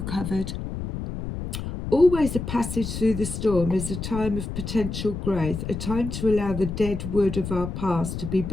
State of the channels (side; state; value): left; noise; rumble, 6 dB below the sound